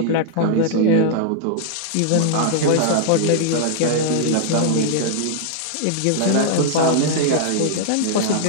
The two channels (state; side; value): different; both; correlation -0.01